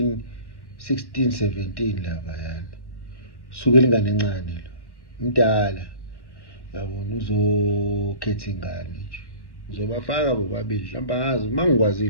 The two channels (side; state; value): right; late; 1.1 ms